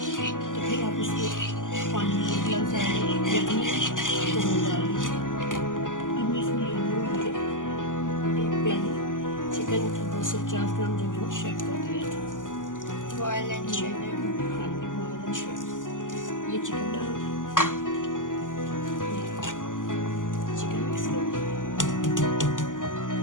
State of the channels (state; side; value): late; right; 0.88 ms